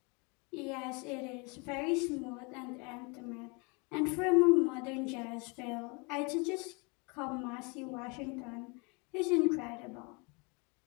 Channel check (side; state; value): right; quieter; 30.8 dB